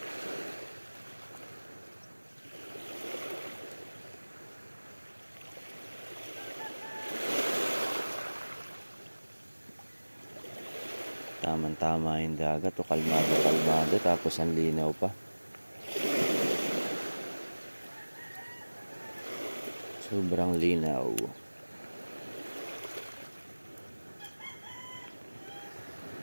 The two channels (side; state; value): both; inverted; correlation -1.00